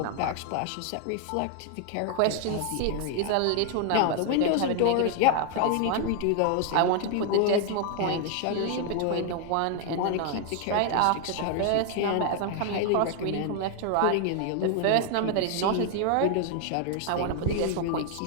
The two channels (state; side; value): different; both; correlation 0.00